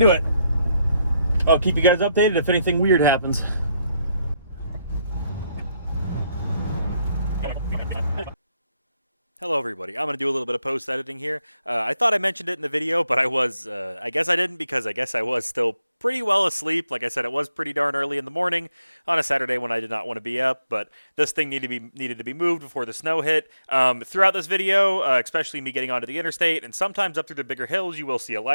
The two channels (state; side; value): inverted; both; correlation -0.79